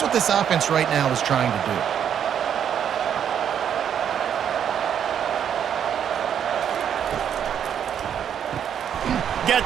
what this offense right now is trying to do.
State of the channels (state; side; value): quieter; left; 8.8 dB